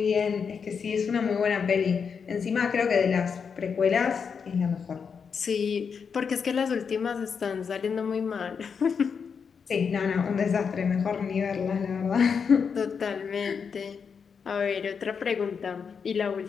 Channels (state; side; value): quieter; right; 6.2 dB